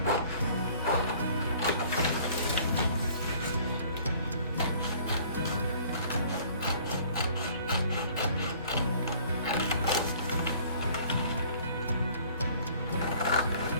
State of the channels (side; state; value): both; inverted; correlation -0.54